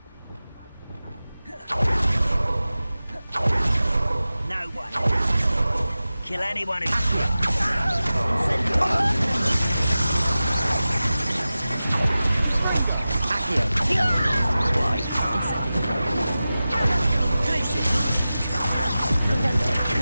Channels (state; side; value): inverted; both; correlation -0.95